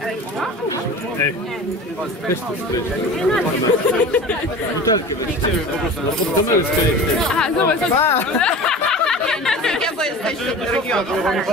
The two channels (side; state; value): both; normal; correlation 0.36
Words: Ej, weź tu spryć. Butelkę weźcie po prostu, no pod kamerę skryć. Aha, zobacz.